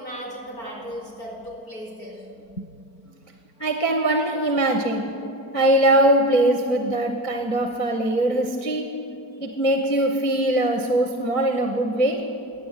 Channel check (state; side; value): late; right; 4.5 ms